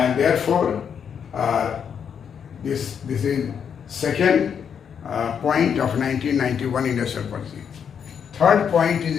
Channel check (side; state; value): right; quieter; 7.5 dB